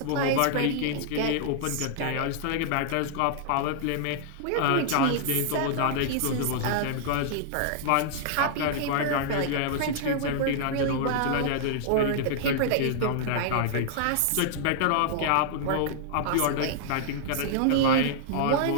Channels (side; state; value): both; different; correlation -0.01